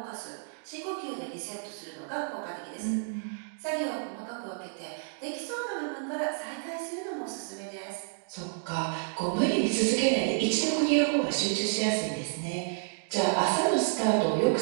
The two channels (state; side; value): silent; left; digital silence